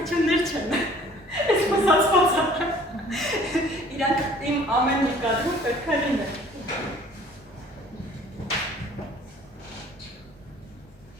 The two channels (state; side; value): normal; both; correlation 0.53